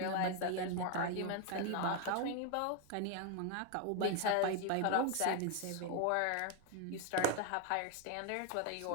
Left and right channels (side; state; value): both; different; correlation 0.01